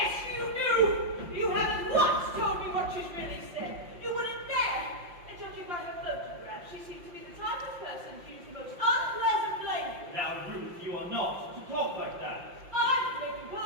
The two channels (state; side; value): late; left; 5.7 ms